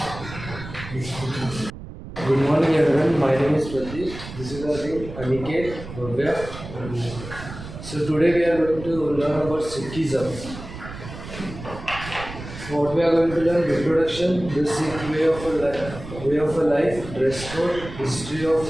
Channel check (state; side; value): noise; right; rumble, 12 dB below the sound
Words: Good morning everyone, my name is Pratik. This is our team Aniket, Bhavya. So today we are going to learn about Sikhism. What we are going to learn: reproduction, the Sikh way of a life, dress code, history of